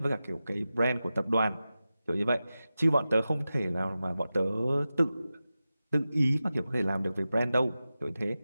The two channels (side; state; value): both; inverted; correlation -0.94